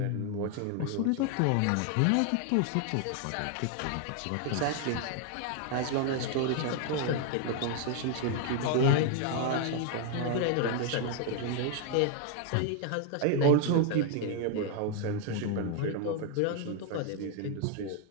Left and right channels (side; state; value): both; different; correlation 0.00